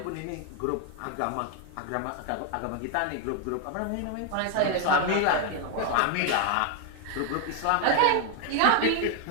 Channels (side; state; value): both; different; correlation 0.00